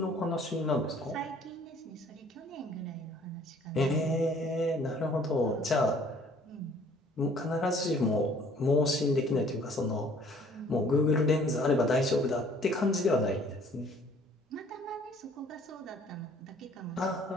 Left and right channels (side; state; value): both; normal; correlation 0.57